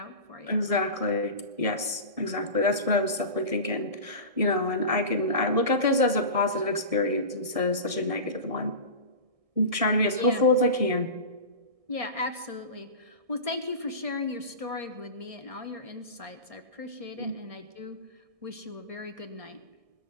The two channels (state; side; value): late; left; 1.6 ms